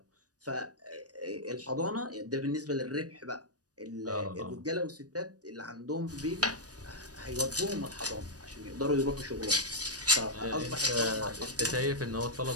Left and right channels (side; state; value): left; late; 0.68 ms